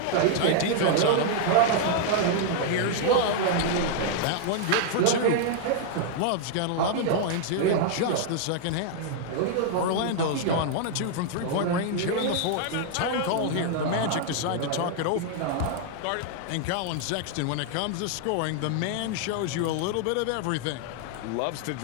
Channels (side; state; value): both; different; correlation 0.00